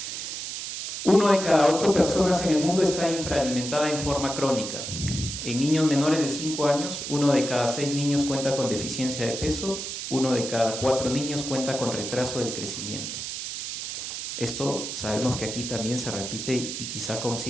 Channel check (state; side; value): noise; right; hiss, 6 dB below the sound